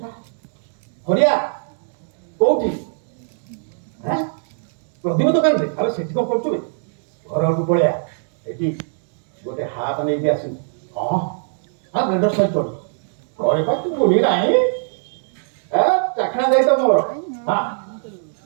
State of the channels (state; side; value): silent; left; digital silence